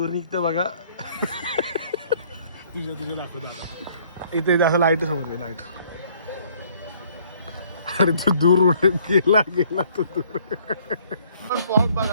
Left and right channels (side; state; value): both; inverted; correlation -0.61